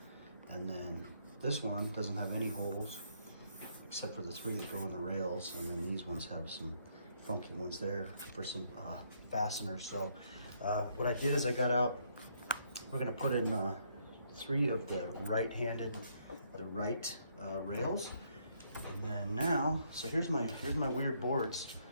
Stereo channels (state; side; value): inverted; both; correlation -0.71